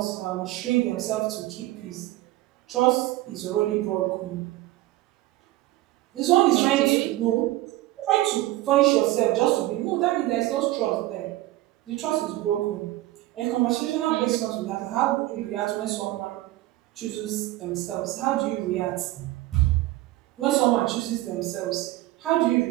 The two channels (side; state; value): left; quieter; 17.0 dB